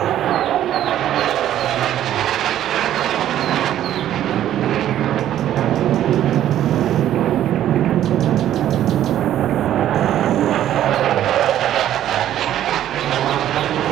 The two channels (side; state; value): left; quieter; 11.8 dB